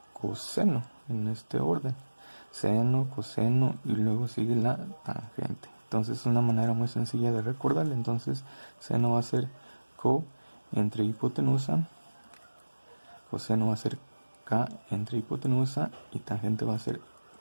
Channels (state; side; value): inverted; both; correlation -1.00